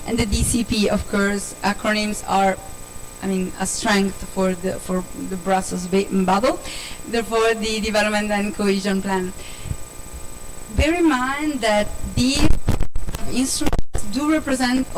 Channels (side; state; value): both; identical; correlation 1.00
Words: and the DCP. Of course, acronyms are, a strength for the Brussels bubble. Therefore, the Development and Cohesion Plan. Bear in mind that these instruments do represent